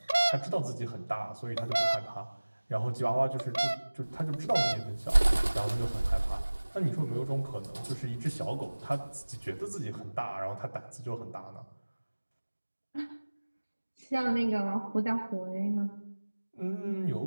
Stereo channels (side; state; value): both; inverted; correlation -1.00